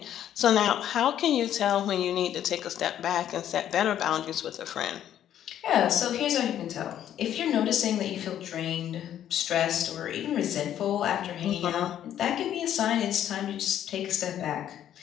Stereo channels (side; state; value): right; quieter; 10.8 dB